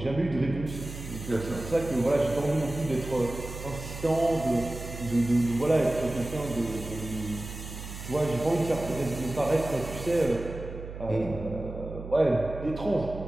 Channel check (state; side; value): noise; right; hum, 10 dB below the sound